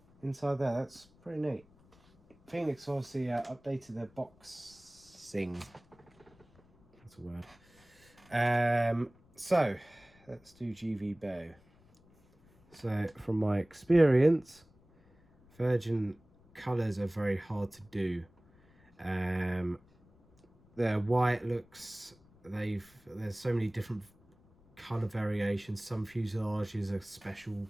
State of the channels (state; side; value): noise; left; rumble, 29 dB below the sound